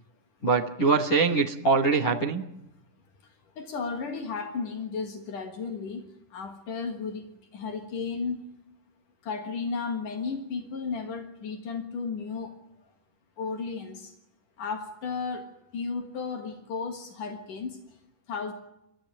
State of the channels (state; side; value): late; right; 10 ms